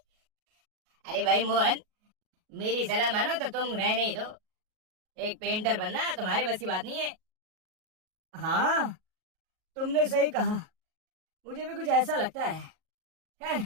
अरे भाई मोहन, मेरी सलाह मानो तो तुम रहने ही दो। एक पेंटर बनना तुम्हारे बस की बात नहीं है। हाँ, तुमने सही कहा। मुझे भी कुछ ऐसा लगता है। खैर,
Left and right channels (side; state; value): left; late; 38 ms